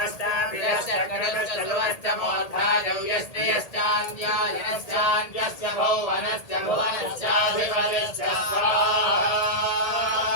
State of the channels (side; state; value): right; late; 1.8 ms